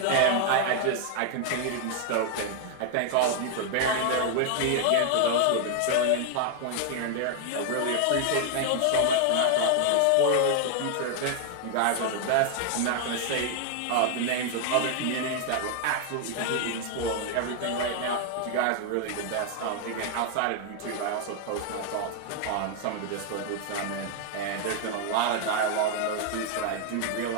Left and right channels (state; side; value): different; both; correlation 0.00